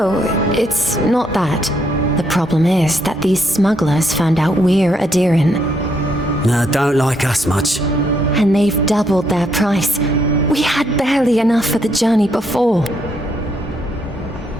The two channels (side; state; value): both; normal; correlation 0.74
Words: it's not that. The problem is that these smugglers found out we're Adiran, No, don't like us much. and they've doubled their price. We had barely enough for the journey before.